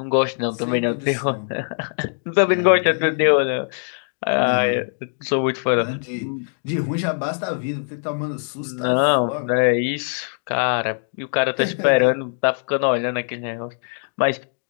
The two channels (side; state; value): right; silent; digital silence